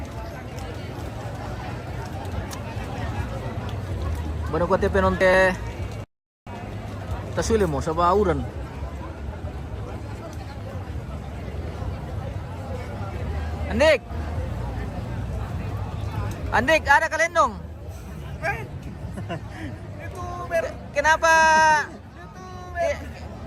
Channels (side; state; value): both; identical; correlation 1.00